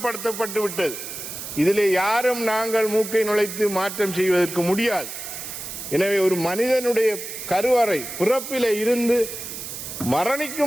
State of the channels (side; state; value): right; noise; hiss, 9 dB below the sound